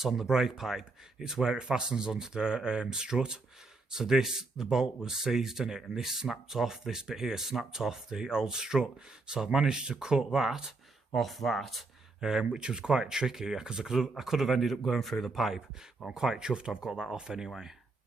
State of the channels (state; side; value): quieter; left; 3.5 dB